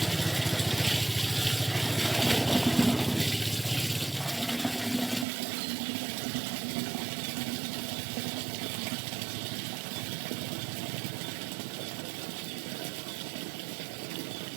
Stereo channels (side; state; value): left; drops out; at 5.2 s